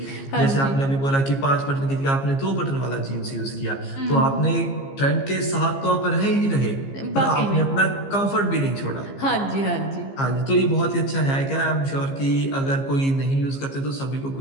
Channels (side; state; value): right; late; 15 ms